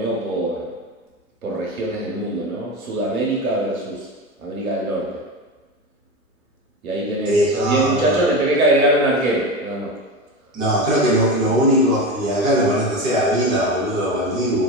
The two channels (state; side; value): normal; both; correlation 0.23